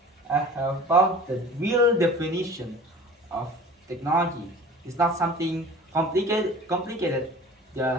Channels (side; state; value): both; normal; correlation 0.43